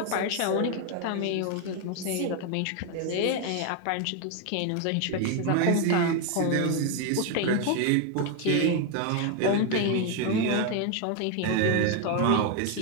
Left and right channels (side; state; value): both; different; correlation 0.01